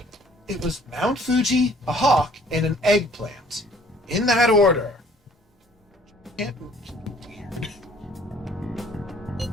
It was Mount Fuji, a hawk, and an eggplant. In that order. Can't.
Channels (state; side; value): normal; both; correlation 0.57